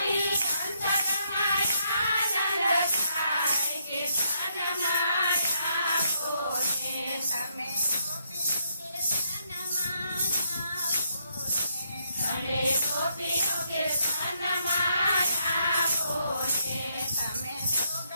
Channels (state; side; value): inverted; both; correlation -0.75